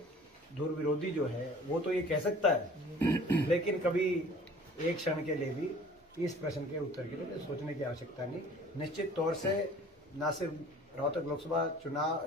दूर विरोधी जो है वो तो ये कह सकता है, लेकिन कभी एक क्षण के लिए भी इस प्रश्न के उत्तर के लिए सोचने की आवश्यकता नहीं। निश्चित तौर से न सिर्फ रोहतक लोकसभा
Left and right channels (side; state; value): both; normal; correlation 0.49